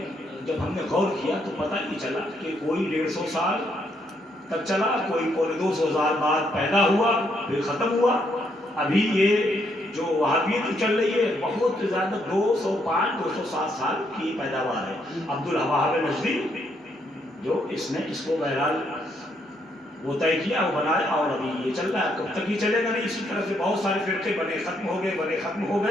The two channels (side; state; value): both; normal; correlation 0.74